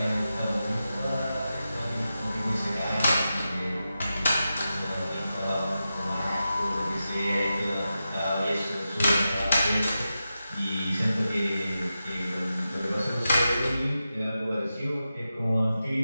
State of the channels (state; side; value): inverted; both; correlation -0.91